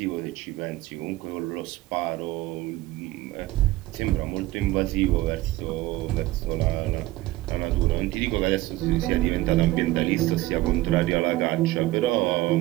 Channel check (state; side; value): quieter; left; 17.6 dB